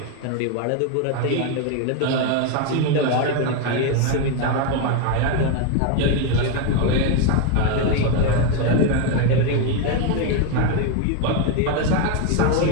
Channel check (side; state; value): both; different; correlation 0.02